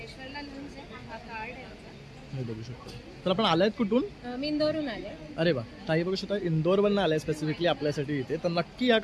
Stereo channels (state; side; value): identical; both; correlation 1.00